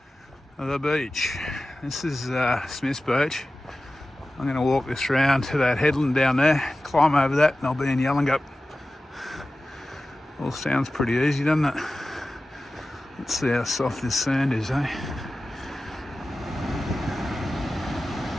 the beach. This is Smith's Beach. I'm going to walk this round to that headland down there, climb over that, and I'll be in Yallingup. All sounds pretty easy, doesn't it? Let's see how soft this sand is, eh?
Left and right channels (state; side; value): normal; both; correlation 0.95